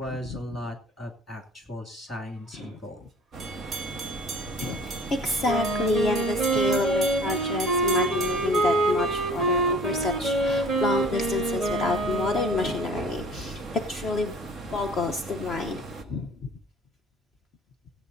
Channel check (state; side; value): normal; both; correlation 0.47